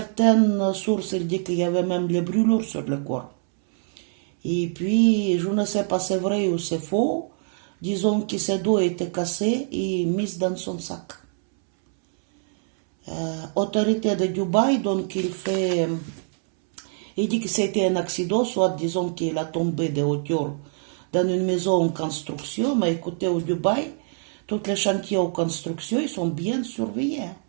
sources disent qu'il y avait même les brûlures sur le corps. Et puis, je ne sais pas si c'est vrai ou c'est faux, disons que ses dos étaient cassés et mis dans son sac. Autorité de Dubaï, donc il dit que c'était un accident, soit disons qu'il a tombé de hauteur dans une maison en construction, mais écoutez, au Dubaï, tous les chantiers en construction, ils sont bien surveillés.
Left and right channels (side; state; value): left; silent; 62 dB below the other